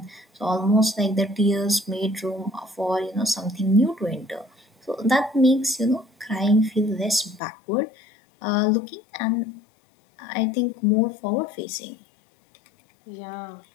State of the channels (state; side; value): drops out; right; at 7.4 s